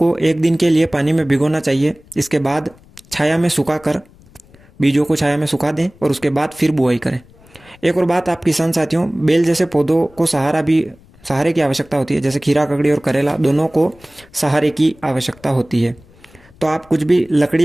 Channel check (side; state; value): left; noise; rumble, 27 dB below the sound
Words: 1 दिन के लिए पानी में भिगोना चाहिए। इसके बाद छाया में सुखाकर बीजों को छाया में सुखा दें, और उसके बाद फिर बुआई करें। एक और बात आप किसान साथियों, बेल जैसे पौधों को सहारे की आवश्यकता होती है। जैसे खीरा ककड़ी और करेला दोनों को सहारे की आवश्यकता होती है। तो आप कुछ भी